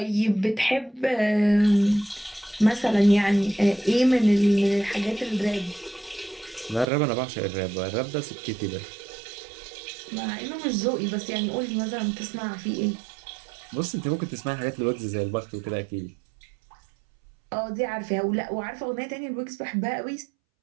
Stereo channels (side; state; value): left; drops out; at 6.9 s